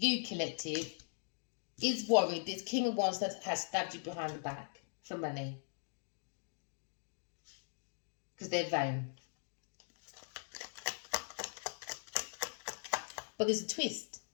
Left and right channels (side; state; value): right; silent; digital silence